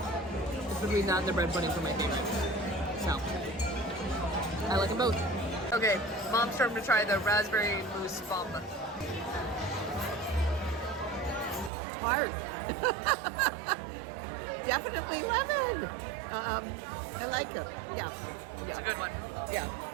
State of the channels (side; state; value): left; drops out; at 11.7 s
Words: It's between that and the bread pudding for my favorite. So, I like them both. Okay, Mom's starting to try the raspberry mousse bomba. Hard. Definitely lemon. I like it. Yeah. It's a good one. Yeah.